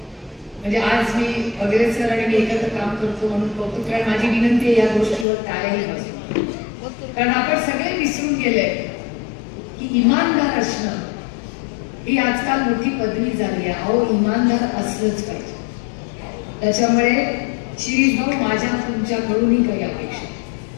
म्हणजे आज मी वगैरे सर आणि मी एकत्र काम करतो म्हणून कौतुक, कारण माझी विनंती आहे या गोष्टीवर टाळ्याही बसू, कारण आपण सगळे विसरून गेले की इमानदार असणं ही आजकाल मोठी पदवी झाली आहे। अहो इमानदार असलंच पाहिजे। त्याच्यामुळे शिरीष भाऊ माझ्या तुमच्याकडूनही काही अपेक्षा,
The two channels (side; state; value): right; drops out; at 5.2 s